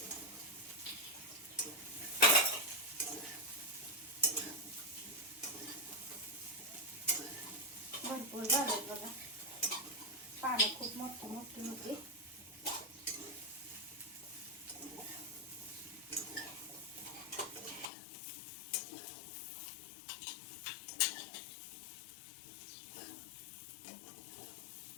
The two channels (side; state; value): right; drops out; at 17.9 s